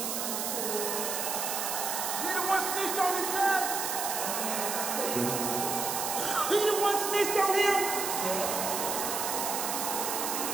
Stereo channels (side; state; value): right; noise; hiss, 1 dB below the sound